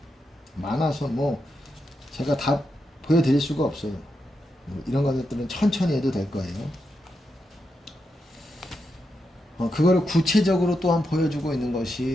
많아서 뭐 제가 다 보여드릴 수가 없어요. 이런 것들은 천천히 해도 될 거예요. 그거를 구체적으로 또한 보여주고 있는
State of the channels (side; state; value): both; normal; correlation 0.85